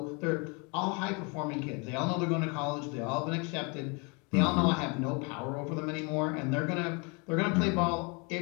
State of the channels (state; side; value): quieter; right; 31.5 dB